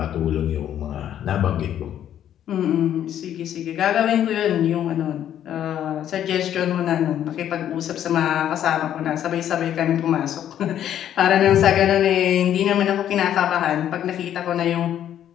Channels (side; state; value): right; quieter; 10.6 dB